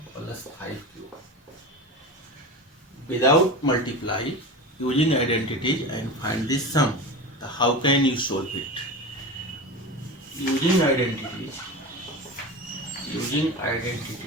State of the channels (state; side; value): normal; both; correlation 0.27